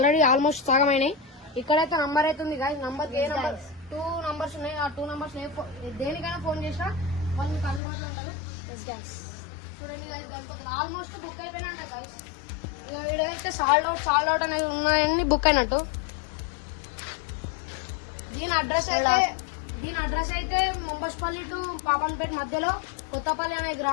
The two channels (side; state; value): right; drops out; at 7.8 s